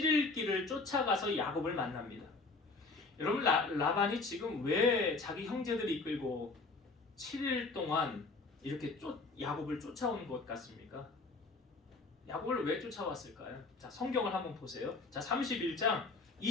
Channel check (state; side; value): quieter; right; 3.7 dB